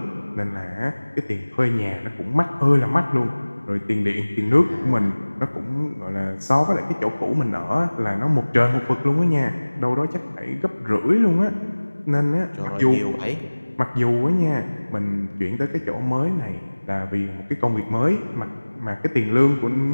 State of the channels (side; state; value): both; inverted; correlation -1.00